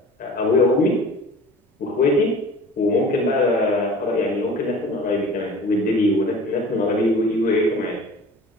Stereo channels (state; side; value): normal; both; correlation 0.42